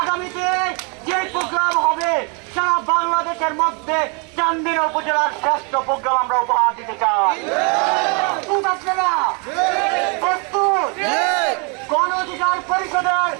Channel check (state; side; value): quieter; left; 34.7 dB